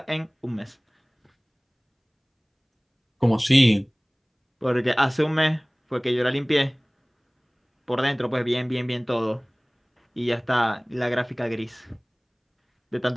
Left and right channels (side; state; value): both; identical; correlation 1.00